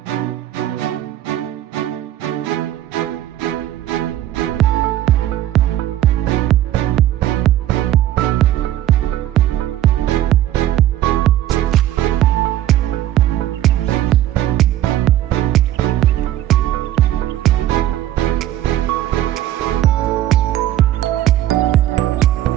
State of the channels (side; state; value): left; quieter; 13.1 dB